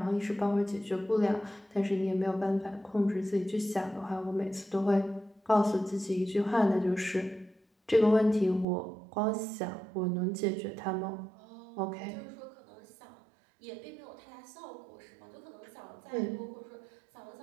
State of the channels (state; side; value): drops out; left; at 8.7 s